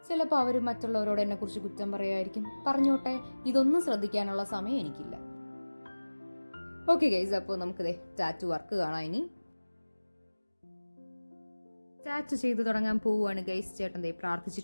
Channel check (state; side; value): inverted; both; correlation -1.00